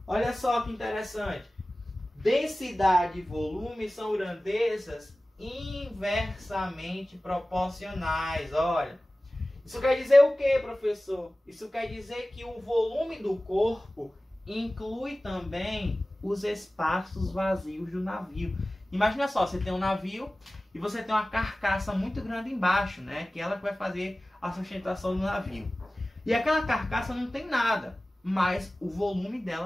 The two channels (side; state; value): both; normal; correlation 0.97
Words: Olha só que interessante. Densidade e volume são grandezas inversamente proporcionais. Olha, isso quer dizer o que, professor? Isso quer dizer que o volume do corpo inclui também os espaços vazios do navio. Imagina só, você tem um navio e você tem uma carcaça muito grande embaixo, né? Que ela vai fazer a sustentação do navio. E aquela carcaça não tem nada, mas o volume